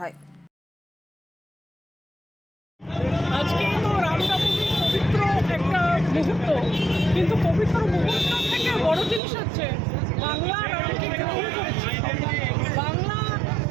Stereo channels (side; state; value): left; drops out; at 9.2 s